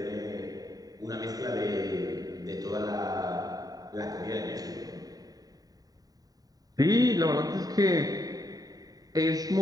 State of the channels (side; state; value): left; late; 0.18 ms